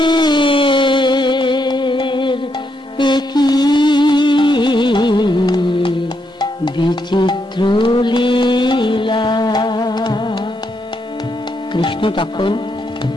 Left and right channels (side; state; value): both; normal; correlation 0.79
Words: একই বিচিত্র লীলা। কৃষ্ণ তখন